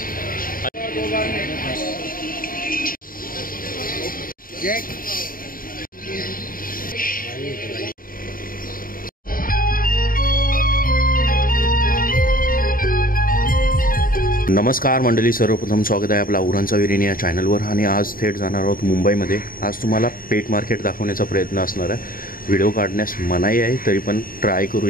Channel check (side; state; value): right; late; 0.41 ms